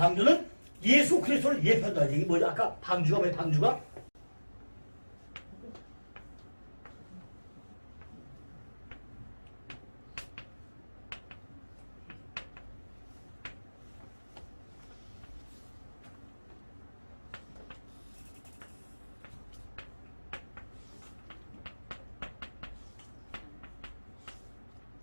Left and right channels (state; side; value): inverted; both; correlation -1.00